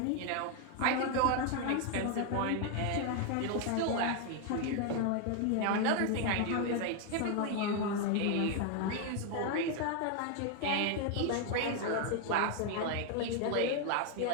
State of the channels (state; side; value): different; both; correlation 0.01